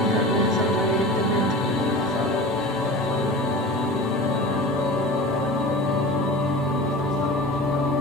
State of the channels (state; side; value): normal; both; correlation 0.34